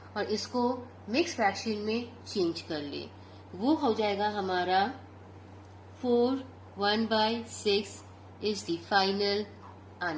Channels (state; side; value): identical; both; correlation 1.00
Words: और इसको मिक्स फ्रैक्शन में चेंज कर ले. वो हो जाएगा हमारा 4/1/6 is the final